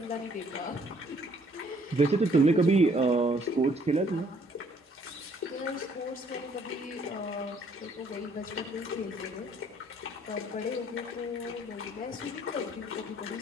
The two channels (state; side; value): normal; both; correlation 0.64